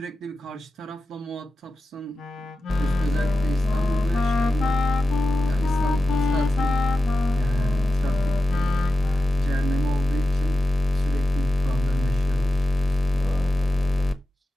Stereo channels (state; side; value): normal; both; correlation 0.93